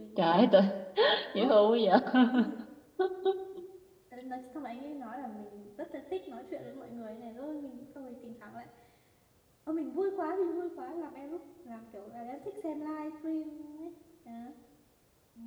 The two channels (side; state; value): both; identical; correlation 1.00